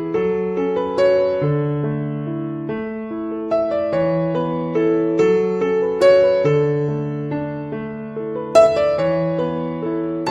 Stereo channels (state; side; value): identical; both; correlation 1.00